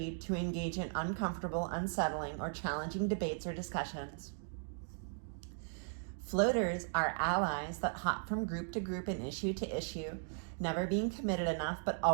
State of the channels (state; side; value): silent; left; digital silence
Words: to engage in uncomfortable, unsettling, or challenging debates or discussions. Floaters are allies that hop from group to group and issue to issue, never being committed enough but